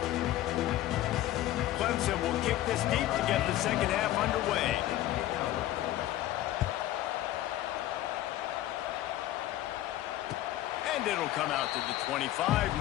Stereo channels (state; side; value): quieter; right; 14.3 dB